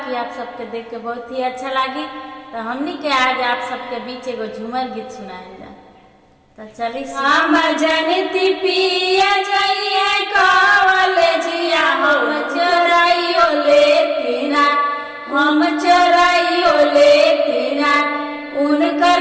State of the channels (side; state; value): both; identical; correlation 1.00